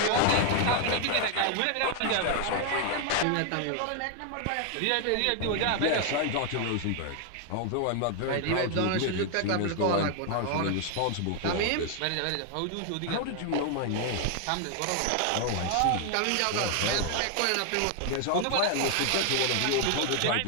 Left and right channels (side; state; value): both; different; correlation 0.00